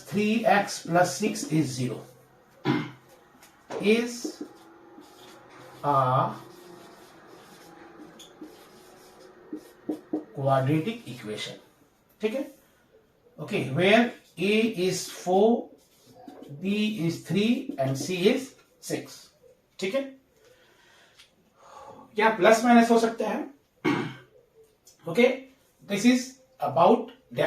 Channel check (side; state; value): both; identical; correlation 1.00